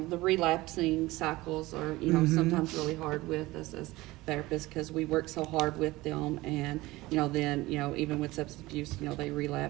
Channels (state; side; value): quieter; left; 19.5 dB